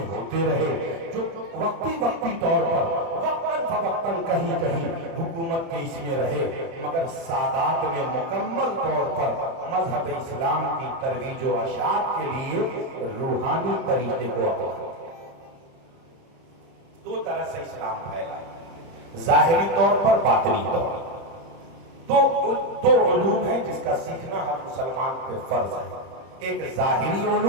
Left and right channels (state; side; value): late; left; 30 ms